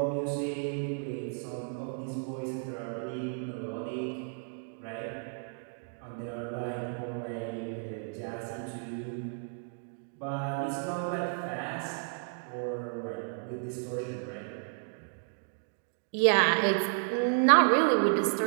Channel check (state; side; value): silent; left; 56 dB below the other